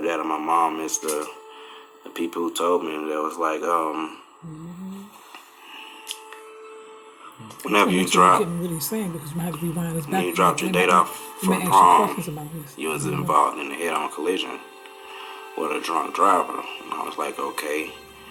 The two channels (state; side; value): identical; both; correlation 1.00